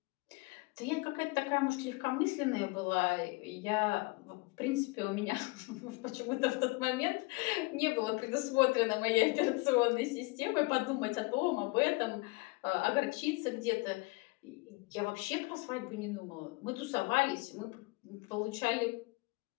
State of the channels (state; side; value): quieter; right; 25.6 dB